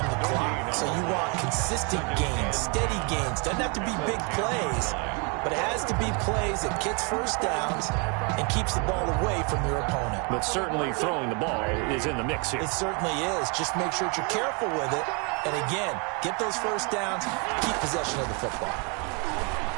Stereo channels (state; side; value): quieter; left; 33.8 dB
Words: the clock. So you want consistent gains, steady gains. Doesn't have to be big plays, but it has to be plays that gets first downs and keeps the ball away from your opponent. But certainly throwing the ball is in the mix here. It certainly is. Just make sure that you're careful with it. And again, get those first downs, keep possession of the football.